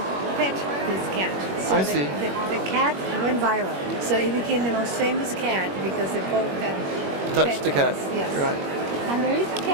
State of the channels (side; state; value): left; late; 21 ms